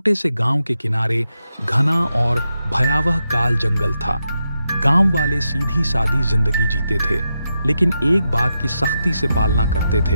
से गांव के किनारे घना और भयावह काल जंगल था। गांव वाले सीधी सादी जिंदगी जीते थे, लेकिन एक बात की सख्ती से पालना करते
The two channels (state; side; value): inverted; both; correlation -0.87